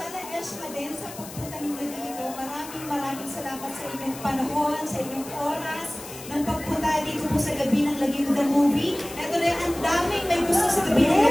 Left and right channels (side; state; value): left; noise; hiss, 14 dB below the sound